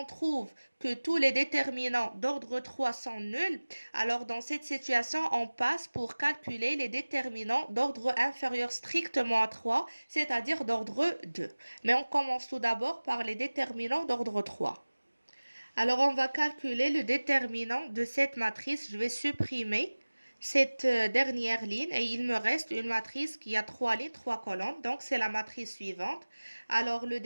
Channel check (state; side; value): inverted; both; correlation -1.00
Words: trouve que tous les déterminants d'ordre 3 sont nuls, alors dans cette situation, on passe pour calculer les déterminants d'ordre inférieur strictement à 3, c'est-à-dire d'ordre 2. Mais on commence tout d'abord par les déterminants d'ordre 3. Alors, on va calculer le déterminant de cette matrice. Je vais supprimer cette dernière ligne et il me reste une matrice qui a 3 lignes, 3 colonnes. Donc, c'est la matrice suivante. Alors, le